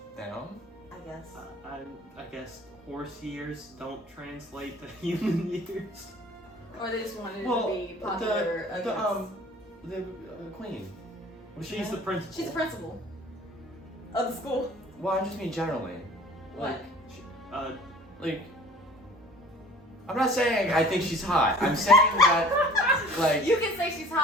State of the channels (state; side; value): normal; both; correlation 0.48